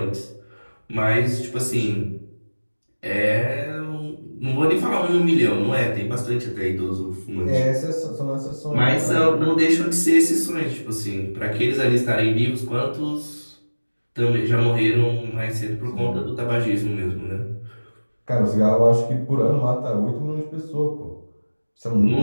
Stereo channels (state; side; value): inverted; both; correlation -1.00